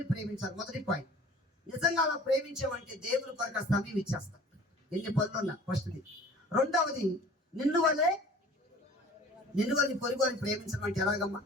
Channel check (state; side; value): normal; both; correlation 0.47